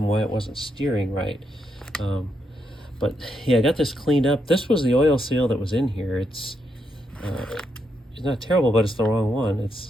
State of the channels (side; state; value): both; normal; correlation 0.80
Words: why it wasn't steering right. But yeah, I got this cleaned up. This was the oil seal that was in here. It's not terrible, but it's the wrong one.